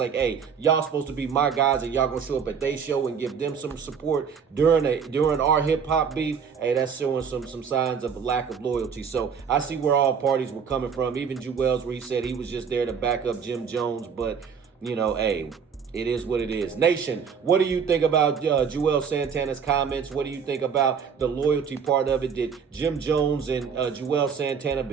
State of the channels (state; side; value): quieter; left; 6.6 dB